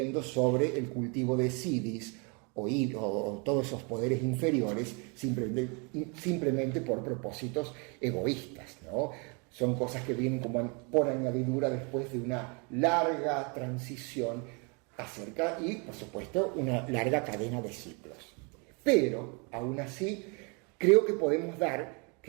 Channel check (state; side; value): quieter; left; 33.2 dB